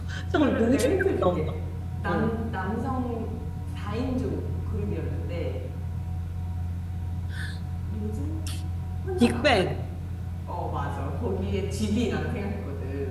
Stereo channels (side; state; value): both; identical; correlation 1.00